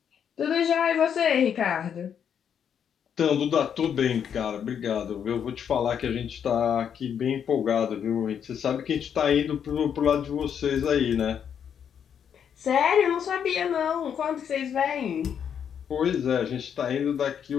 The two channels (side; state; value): right; quieter; 8.2 dB